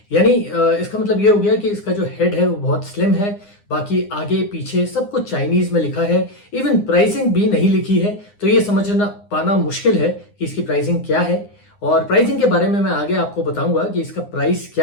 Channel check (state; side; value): late; right; 9.8 ms